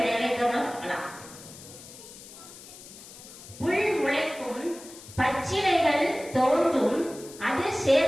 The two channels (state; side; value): noise; left; hiss, 17 dB below the sound